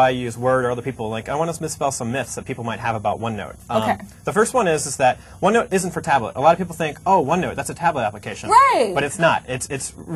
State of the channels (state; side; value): identical; both; correlation 1.00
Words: you use Word or other people. Like I want to misspell some myths that people might have about OneNote. Okay. The first one is that OneNote isn't for tablet. A lot of people think, oh, OneNote, that's a tablet application. Right. But it's not.